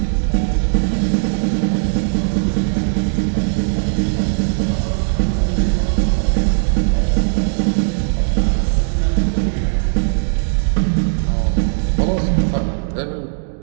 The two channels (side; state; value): left; silent; digital silence